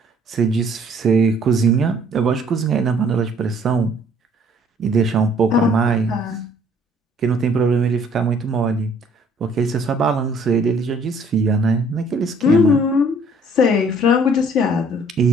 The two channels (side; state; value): both; normal; correlation 0.59